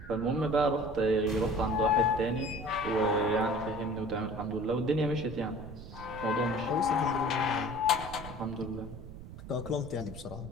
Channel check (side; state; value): right; noise; rumble, 13 dB below the sound